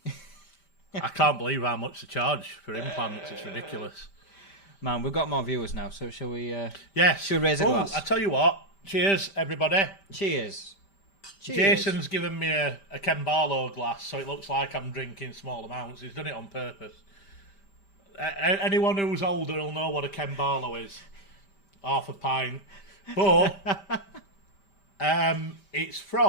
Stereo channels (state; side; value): late; right; 5.1 ms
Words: I can't believe how much they charge for implants. It's ridiculous. Man, we've got more viewers now, so shall we... yes. Shall we raise a glass? I tell you what. Cheers, everybody. Cheers. Cheers. Jason's given me a Ken Barlow glass, so it looks like I'm drinking small amounts. He's done it on purpose. Anyone who's older will know what a Ken Barlow is. Half a pint. But it's